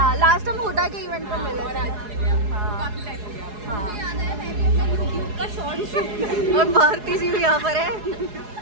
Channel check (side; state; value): left; late; 4.8 ms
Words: लास्ट हम हुडा के इवेंट पर मिले थे। हाँ, और भारती जी भी यहाँ पर है।